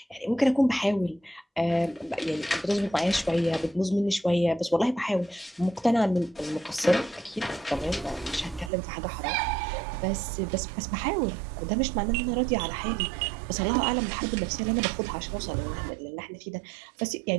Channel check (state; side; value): drops out; left; at 8.7 s